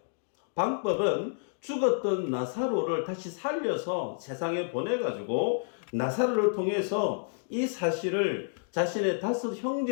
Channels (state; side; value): silent; right; digital silence